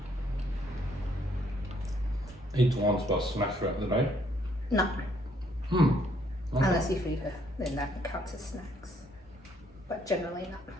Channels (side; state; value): both; normal; correlation 0.68